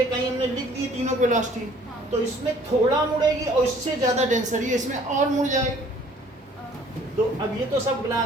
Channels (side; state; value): both; normal; correlation 0.56